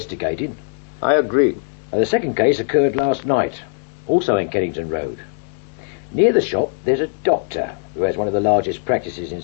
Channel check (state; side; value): silent; right; 65 dB below the other